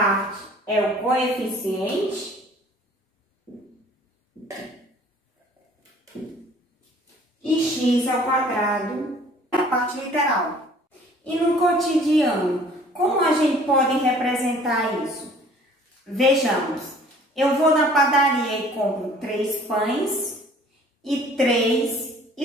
é o coeficiente e x ao quadrado é a parte literal. E no cotidiano, como a gente pode representar isso? Vejamos. Eu vou na padaria e compro 3 pães e 3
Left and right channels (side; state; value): both; normal; correlation 0.53